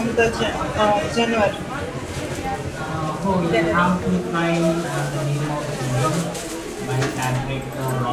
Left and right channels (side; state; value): both; identical; correlation 1.00